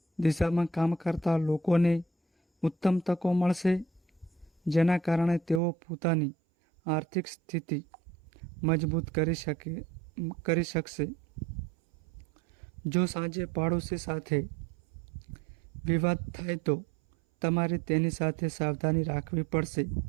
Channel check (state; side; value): drops out; left; at 5.6 s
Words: દિશામાં કામ કરતા લોકોને ઉત્તમ તકો મળશે, જેના કારણે તેઓ પોતાની આર્થિક સ્થિતિ મજબૂત કરી શકશે. જો સાંજે પાડોશી સાથે વિવાદ થાય તો તમારે તેની સાથે સાવધાની રાખવી પડશે.